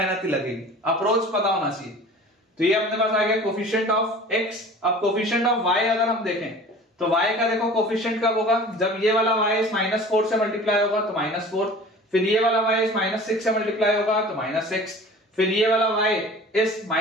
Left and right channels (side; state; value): both; normal; correlation 0.43